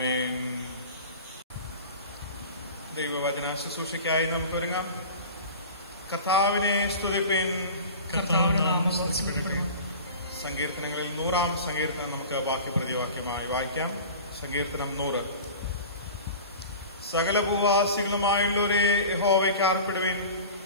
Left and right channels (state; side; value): inverted; both; correlation -0.37